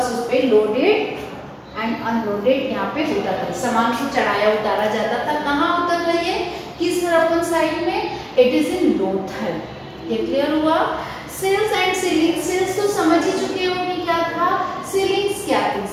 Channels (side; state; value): both; identical; correlation 1.00